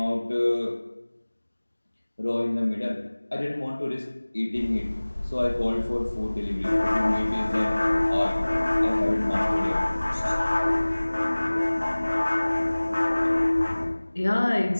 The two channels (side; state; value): both; inverted; correlation -1.00